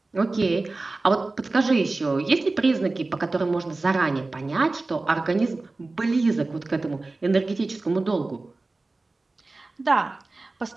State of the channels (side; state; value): left; quieter; 3.3 dB